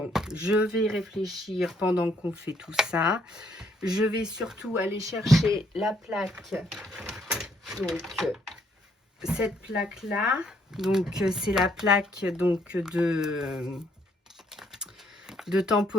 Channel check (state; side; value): normal; both; correlation 0.69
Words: je vais réfléchir pendant qu'on fait tout ça. Je vais surtout aller chercher la plaque. Donc, cette plaque-là. Donc, c'est la plaque donc, de